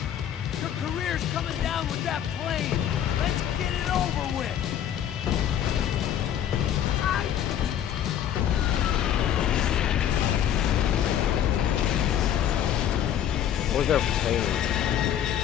Your career's coming down with that plane! Let's get it over with! Where's their plane?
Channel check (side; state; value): right; quieter; 10.1 dB